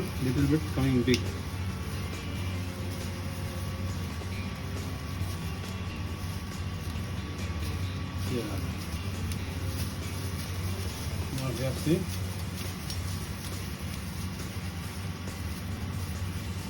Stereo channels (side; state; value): both; identical; correlation 1.00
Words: little bit coming big. Yeah. Now we have see.